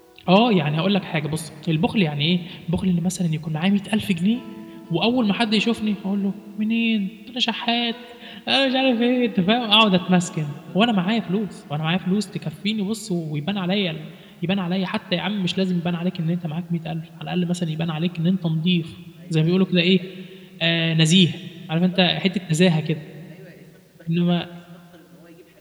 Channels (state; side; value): identical; both; correlation 1.00